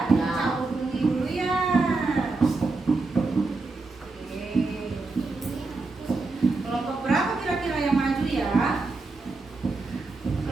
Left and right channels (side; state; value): left; quieter; 3.6 dB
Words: cabut undi dulu ya. Oke. Kelompok berapa kira-kira yang maju ya?